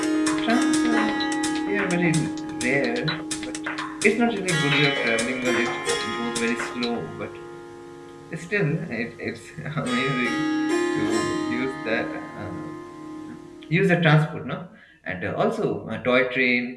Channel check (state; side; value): identical; both; correlation 1.00